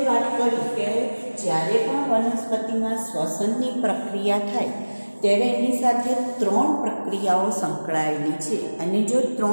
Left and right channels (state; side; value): inverted; both; correlation -1.00